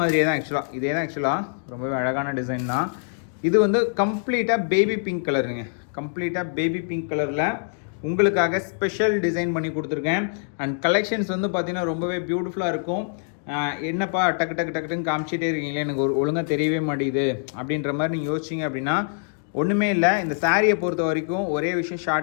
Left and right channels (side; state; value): right; silent; digital silence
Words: தான் ஆக்சுவலாக, இதே தான் ஆக்சுவலாக. ரொம்பவே அழகான டிசைன் தான். இது வந்து கம்ப்ளீட்டாக பேபி பிங்க் கலருங்க. கம்ப்ளீட்டாக பேபி பிங்க் கலரில் உங்களுக்காக ஸ்பெஷல் டிசைன் பண்ணி கொடுத்துருக்கேன். அண்ட் கலெக்ஷன்ஸ் வந்து பார்த்தீங்கன்னா ரொம்பவே பியூட்டிஃபுல்லாக இருக்கும். என்னப்பா டக்கு டக்கு டக்குன்னு காமிச்சிட்டே இருக்கீங்களே, எனக்கு ஒழுங்காக தெரியவே மாட்டேங்குது அப்படின்ற மாதிரி நீங்கள் யோசிச்சிங்க அப்படின்னா ஒன்றுமே இல்லை. இந்த சாரியை பொறுத்த வரைக்கும் ஒரே விஷயம்